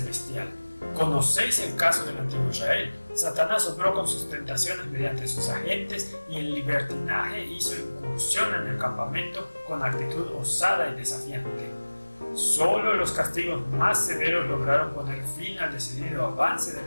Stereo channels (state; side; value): inverted; both; correlation -1.00